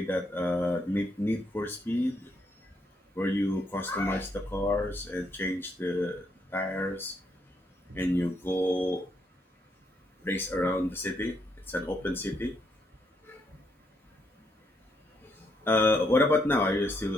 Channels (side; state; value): both; normal; correlation 0.75